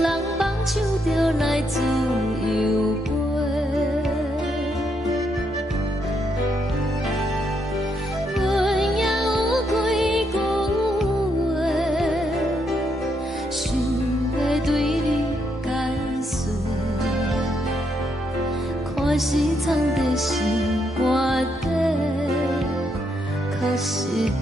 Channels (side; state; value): both; normal; correlation 0.77